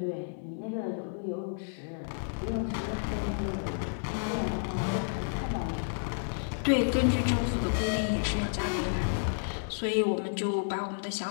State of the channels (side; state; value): right; silent; digital silence